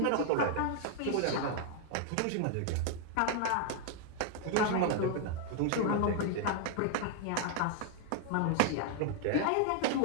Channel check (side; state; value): both; different; correlation 0.00